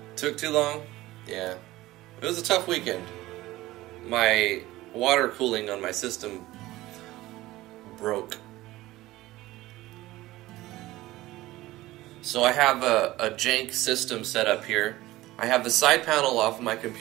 Took too long? Yeah. It was a tough weekend. My water cooling on my system broke. So I have a jank system set up here. I have the side panel off of my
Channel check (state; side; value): quieter; left; 17.5 dB